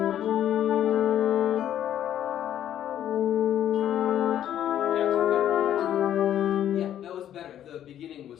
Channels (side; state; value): right; quieter; 10.9 dB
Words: The beginning was